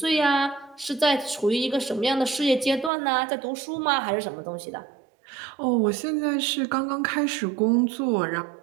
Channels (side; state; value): left; drops out; at 2.9 s